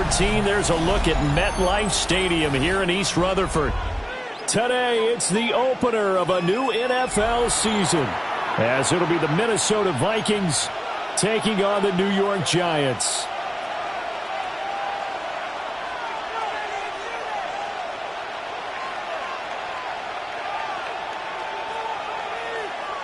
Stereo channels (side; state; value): both; identical; correlation 1.00